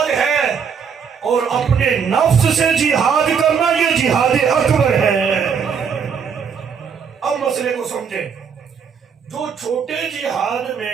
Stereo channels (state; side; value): quieter; left; 6.6 dB